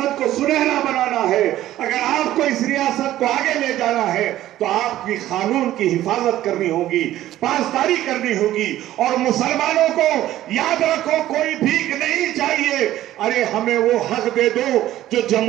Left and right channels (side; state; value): left; quieter; 13.9 dB